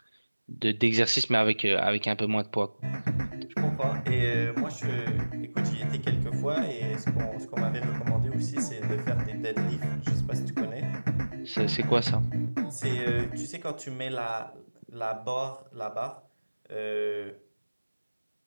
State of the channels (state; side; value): inverted; both; correlation -1.00